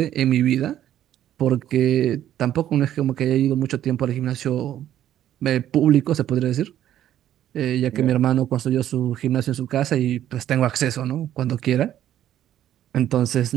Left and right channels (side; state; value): left; quieter; 11.7 dB